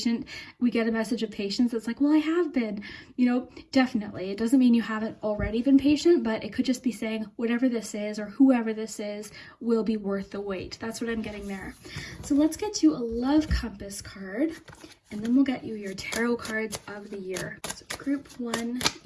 we get a message of patience. It's like, well, I have been, you know, definitely. It doesn't mean you haven't already been patient, but it could just be saying whatever this is or whoever this is will be worth the wait. That's what I'm getting there. So let's get you a love compass card, and then we'll get you your tarot cards of the year. So group 1,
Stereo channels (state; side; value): identical; both; correlation 1.00